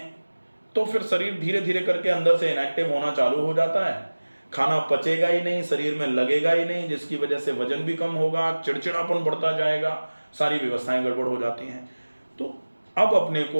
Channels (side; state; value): both; inverted; correlation -1.00